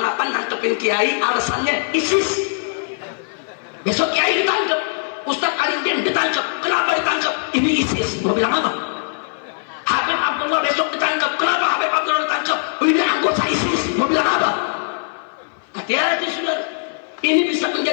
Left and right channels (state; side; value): silent; right; 57 dB below the other